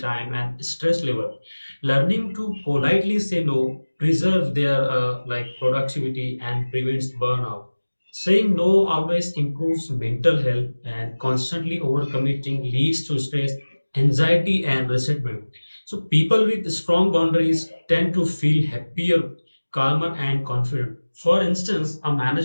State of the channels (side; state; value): both; inverted; correlation -1.00